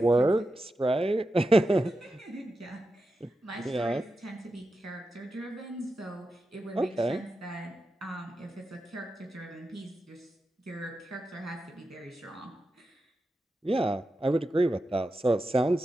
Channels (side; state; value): both; normal; correlation 0.89